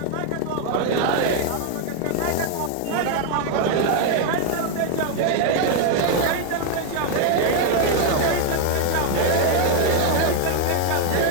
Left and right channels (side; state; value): both; different; correlation 0.00